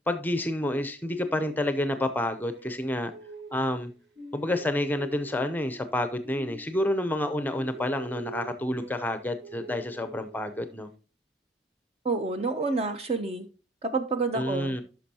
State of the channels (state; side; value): normal; both; correlation 0.65